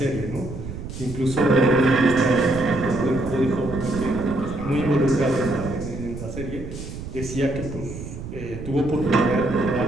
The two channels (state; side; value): noise; right; rumble, 10 dB below the sound